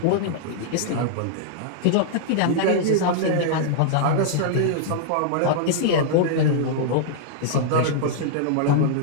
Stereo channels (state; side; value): different; both; correlation -0.01